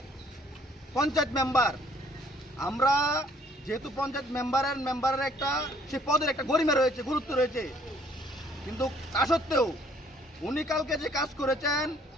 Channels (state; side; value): normal; both; correlation 0.61